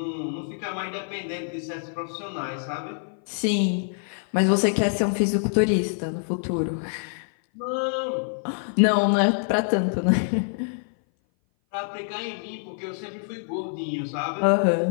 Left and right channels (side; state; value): right; silent; 57 dB below the other